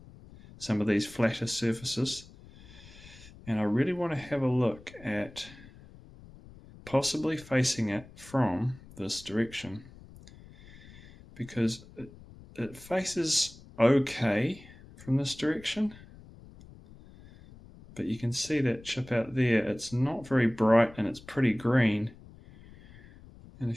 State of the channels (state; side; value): noise; left; rumble, 20 dB below the sound